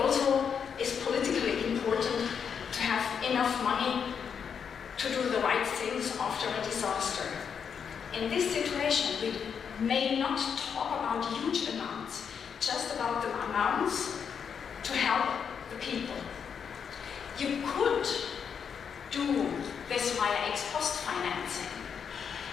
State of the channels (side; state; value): right; quieter; 7.0 dB